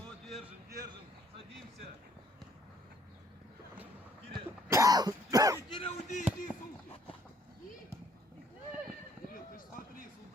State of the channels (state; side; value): normal; both; correlation 0.63